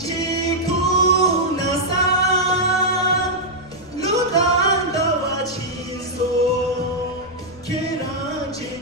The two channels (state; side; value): noise; left; rumble, 28 dB below the sound